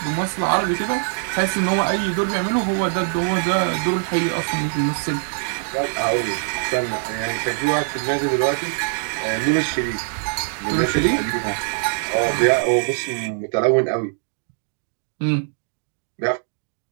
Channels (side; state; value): left; silent; digital silence